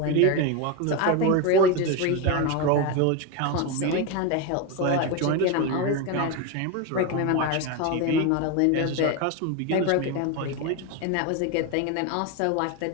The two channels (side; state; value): both; different; correlation 0.03